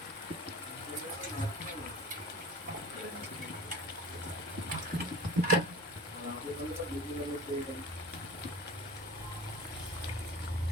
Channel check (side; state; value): both; normal; correlation 0.38